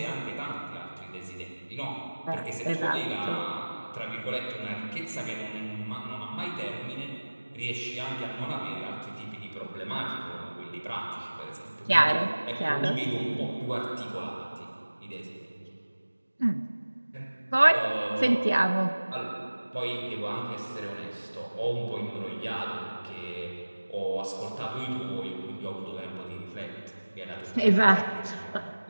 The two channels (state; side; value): inverted; both; correlation -1.00